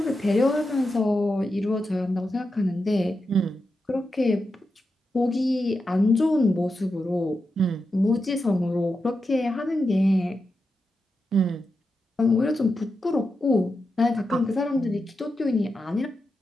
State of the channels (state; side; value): normal; both; correlation 0.88